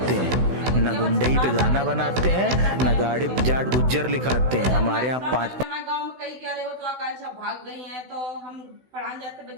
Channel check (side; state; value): left; late; 16 ms